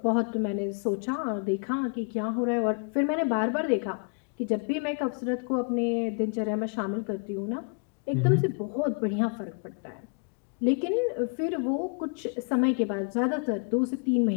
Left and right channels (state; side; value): quieter; right; 38.6 dB